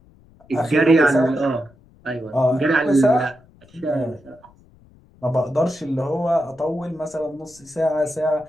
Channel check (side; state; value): left; noise; rumble, 28 dB below the sound